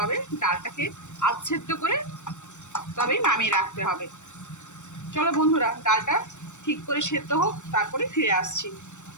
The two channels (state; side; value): late; right; 0.84 ms